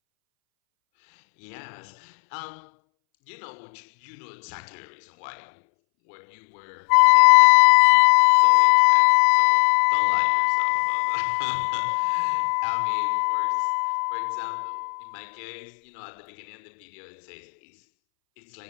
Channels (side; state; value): right; silent; 66 dB below the other